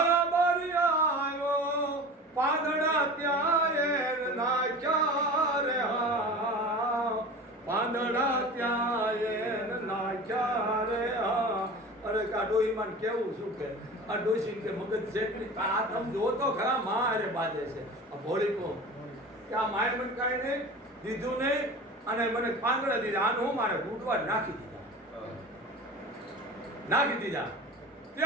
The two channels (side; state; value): both; normal; correlation 0.36